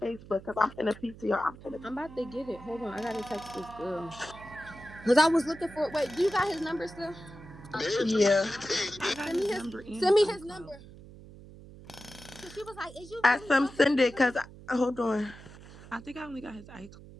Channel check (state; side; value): noise; right; hum, 18 dB below the sound